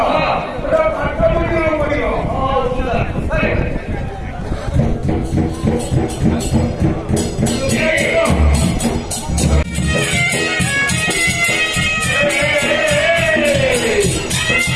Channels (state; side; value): identical; both; correlation 1.00